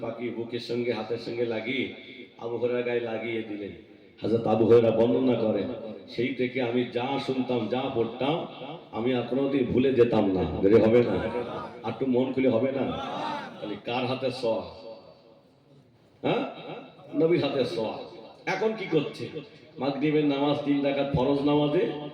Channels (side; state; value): both; identical; correlation 1.00